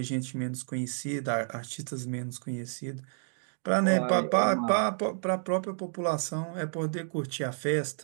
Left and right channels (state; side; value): silent; left; digital silence